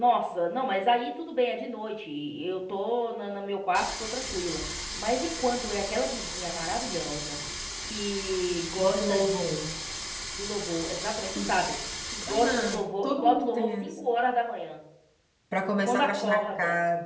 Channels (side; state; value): both; identical; correlation 1.00